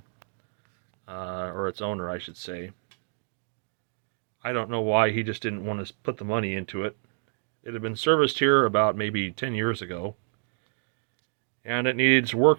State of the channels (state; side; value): silent; left; 59 dB below the other